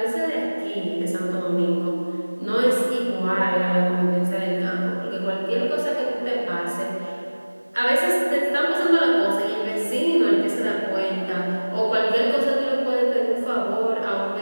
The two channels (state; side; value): inverted; both; correlation -1.00